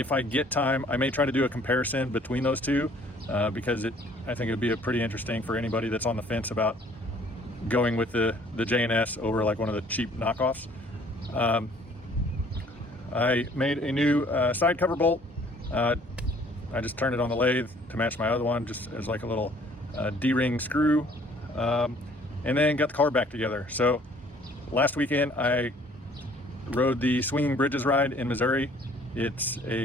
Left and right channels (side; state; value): both; normal; correlation 0.57